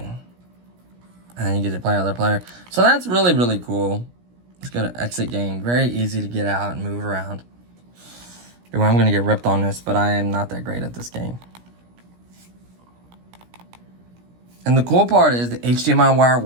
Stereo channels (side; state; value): left; late; 17 ms